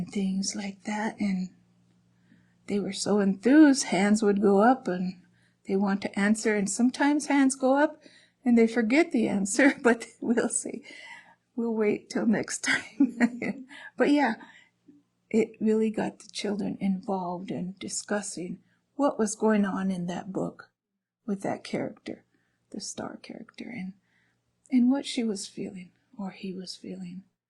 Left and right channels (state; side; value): identical; both; correlation 1.00